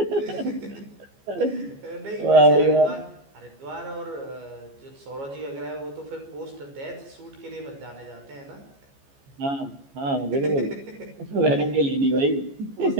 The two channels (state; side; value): late; left; 14 ms